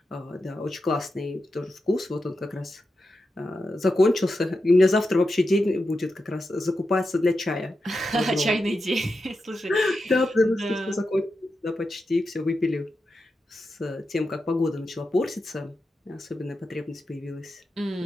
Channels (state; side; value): normal; both; correlation 0.89